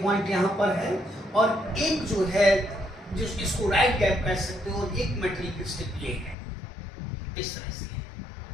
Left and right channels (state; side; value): drops out; right; at 6.4 s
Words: पॉइंट यहां पर है और एक जो है जिस इसको राइट गैप कह सकते हो, और एक मेटेलिक स्ट्रिप ये है, इस तरह से है,